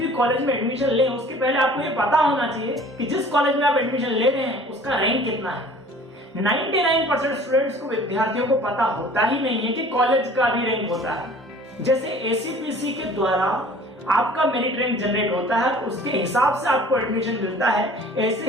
कॉलेज में एडमिशन लें उसके पहले आपको ये पता होना चाहिए कि जिस कॉलेज में आप एडमिशन ले रहे हैं उसका रैंक कितना है। 99% स्टूडेंट्स को, विद्यार्थियों को पता होता ही नहीं है कि कॉलेज का भी रैंक होता है। जैसे एसीपीसी के द्वारा आपका मेरिट रैंक जनरेट होता है, उसके हिसाब से आपको एडमिशन मिलता है,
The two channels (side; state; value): both; normal; correlation 0.48